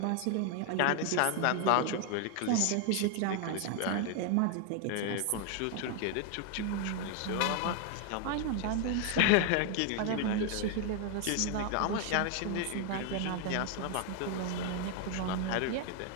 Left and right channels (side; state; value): both; different; correlation 0.01